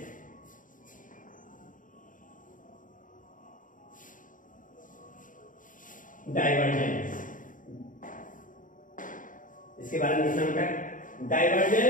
डाइवर्जेंस इसके बारे में लिखना होगा,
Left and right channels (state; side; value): late; right; 0.38 ms